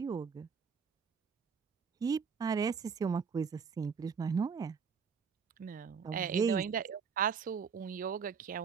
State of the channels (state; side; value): quieter; left; 6.1 dB